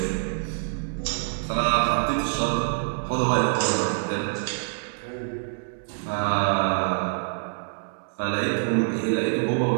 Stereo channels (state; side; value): silent; left; digital silence